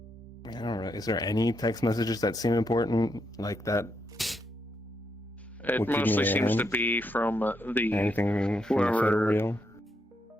I don't know, is there any text messages that seem important like that? It would keep mostly me seems in? to be from the Anything from the photo whoever. reel?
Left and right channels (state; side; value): normal; both; correlation 0.80